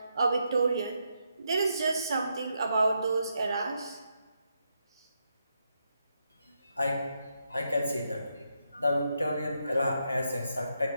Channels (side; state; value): both; inverted; correlation -0.81